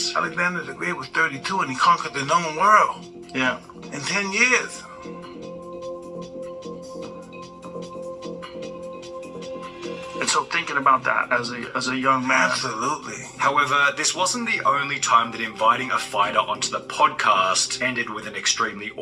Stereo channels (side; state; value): both; identical; correlation 1.00